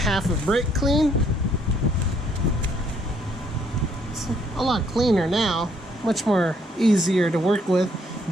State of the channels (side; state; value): both; normal; correlation 0.68